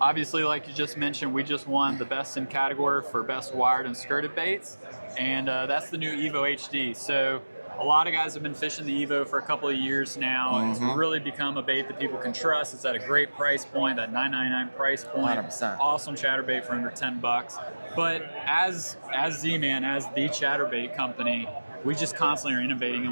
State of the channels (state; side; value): inverted; both; correlation -1.00